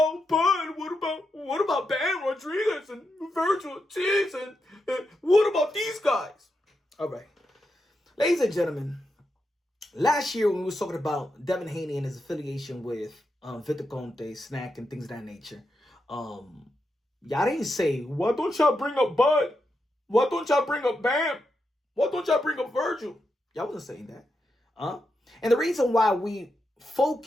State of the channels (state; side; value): normal; both; correlation 0.85